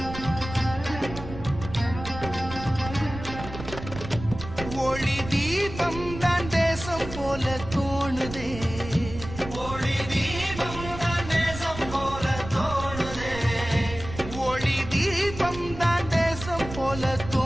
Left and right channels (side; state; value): right; noise; rumble, 11 dB below the sound